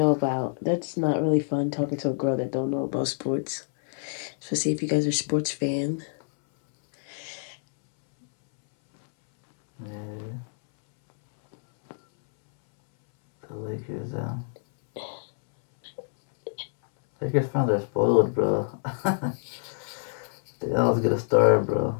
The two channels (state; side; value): silent; right; 61 dB below the other